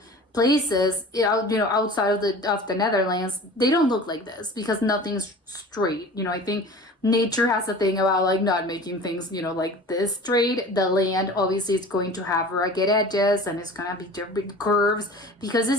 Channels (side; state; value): both; normal; correlation 0.40